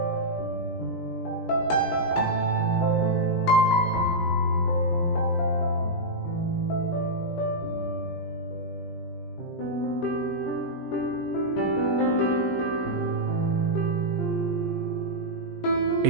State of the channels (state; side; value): late; right; 17 ms